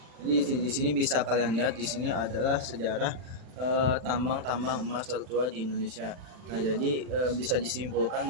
Jadi di sini bisa kalian lihat, di sini adalah sejarah tambang-tambang emas tertua di Indonesia. Nah, jadi bisa disimpulkan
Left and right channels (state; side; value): late; left; 40 ms